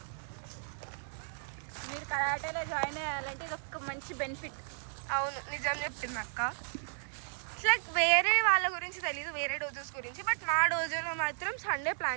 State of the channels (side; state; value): left; silent; 55 dB below the other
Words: మీరు కరాటేలో జాయిన్ అయ్యాలంటే ఒక మంచి బెనిఫిట్. అవును, నిజం చెప్పింది అక్క. లైక్ వేరే వాళ్ళ గురించి తెలీదు, వేరే డోజోస్ గురించి. బట్ మా డోజోలో మాత్రం సండే